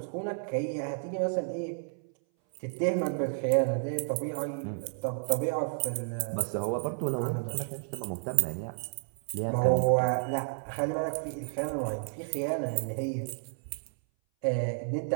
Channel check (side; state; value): left; silent; 57 dB below the other